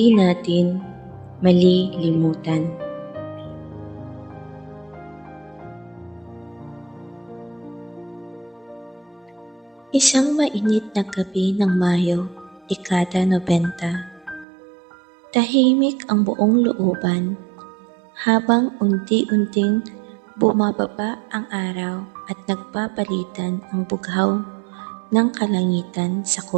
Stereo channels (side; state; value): left; drops out; at 14.5 s